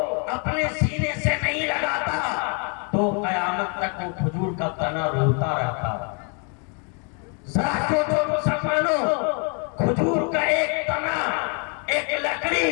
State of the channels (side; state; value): right; quieter; 37.5 dB